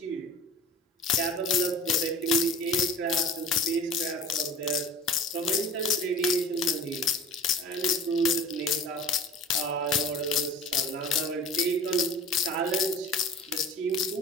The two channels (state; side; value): normal; both; correlation 0.42